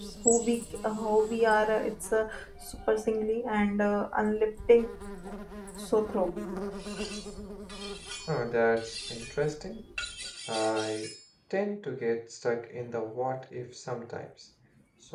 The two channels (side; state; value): both; identical; correlation 1.00